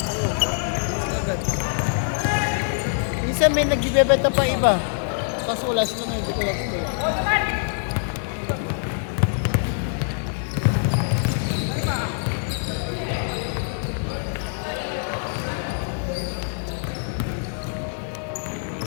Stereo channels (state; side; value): silent; right; digital silence